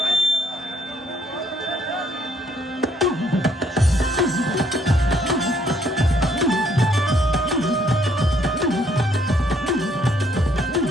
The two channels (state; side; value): normal; both; correlation 0.67